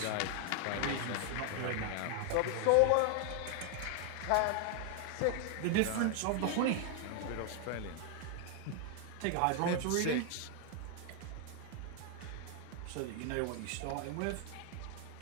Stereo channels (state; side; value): different; both; correlation 0.00